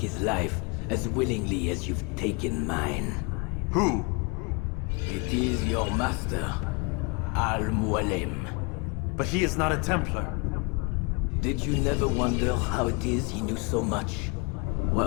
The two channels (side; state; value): right; quieter; 31.3 dB